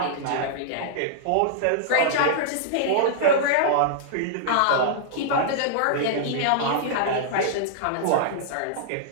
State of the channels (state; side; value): different; both; correlation -0.02